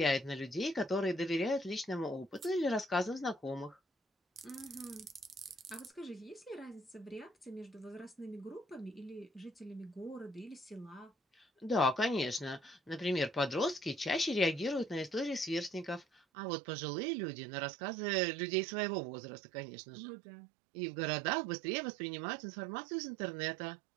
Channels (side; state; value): left; drops out; at 16.2 s